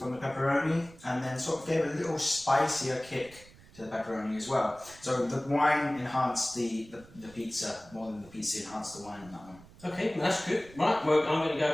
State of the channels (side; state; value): right; noise; rumble, 23 dB below the sound